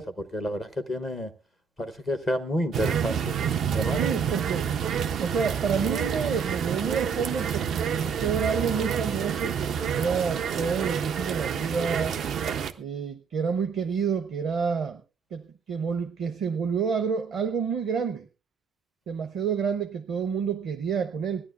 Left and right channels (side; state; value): left; quieter; 5.7 dB